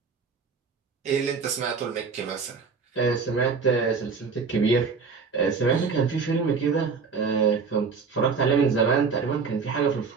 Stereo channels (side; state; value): left; quieter; 5.2 dB